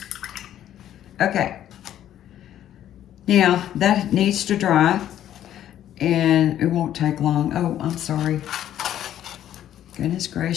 Okay. Now that needs to dry, and it won't take long. Oh, I'm sorry. Goodness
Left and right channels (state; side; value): quieter; right; 11.4 dB